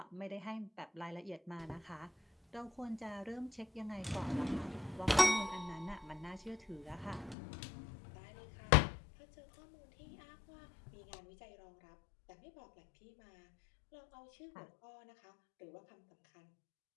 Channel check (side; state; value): right; drops out; at 7.4 s